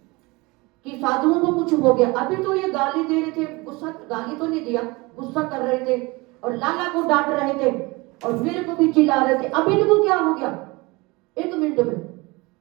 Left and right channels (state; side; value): quieter; left; 24.3 dB